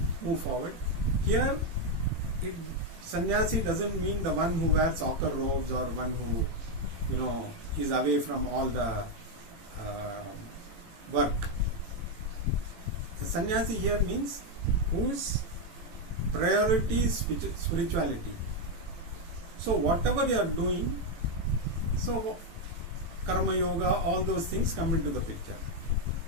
move forward. Here, sannyasi doesn't mean the one who wears ochre robes or one who, is away from all the work. A sannyasi here means whose priority is spirituality. So whatever you are doing, so karma yoga, all those things come into the picture.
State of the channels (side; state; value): left; late; 18 ms